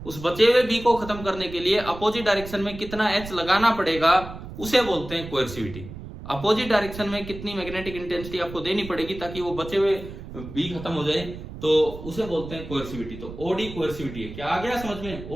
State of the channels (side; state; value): right; noise; rumble, 12 dB below the sound